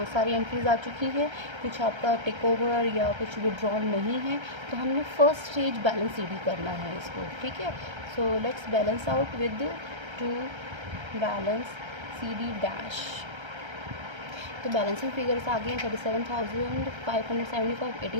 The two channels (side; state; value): left; late; 1.3 ms